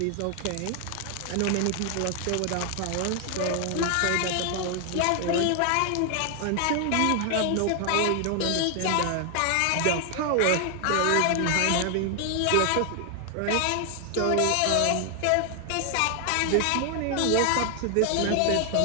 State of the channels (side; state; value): both; different; correlation 0.00